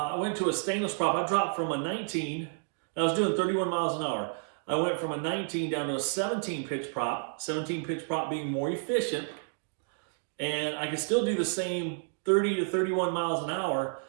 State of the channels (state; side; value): silent; left; digital silence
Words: went to a stainless prop. I dropped from a 19, and I was doing 31 miles an hour. I went from a 19 down to a 17 pitch prop, 17 pitch prop being more efficient. And I could still do the same 30 to 31 miles an hour.